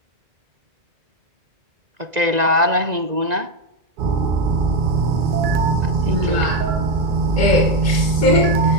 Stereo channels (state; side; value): late; left; 2.0 ms